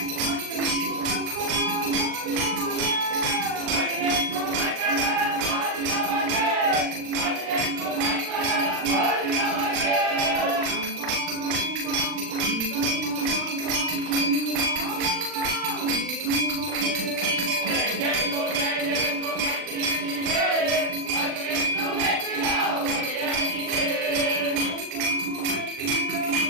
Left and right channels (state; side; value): late; left; 40 ms